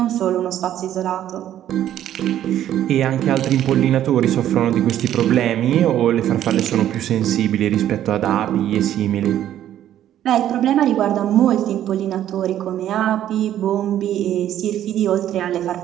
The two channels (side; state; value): left; quieter; 11.5 dB